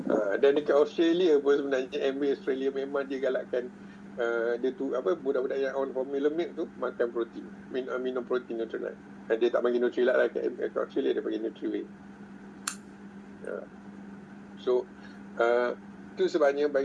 Dan dekat Australia pun sebenarnya MBA Australia memang dia galakkan dia tu budak-budak yang on formula milk tu makan protein, minum protein Nutrilite. Dia tak bagi Nutrilite lah kat Australia, dia bagi Nutrilite. So itu sebabnya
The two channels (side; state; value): both; identical; correlation 1.00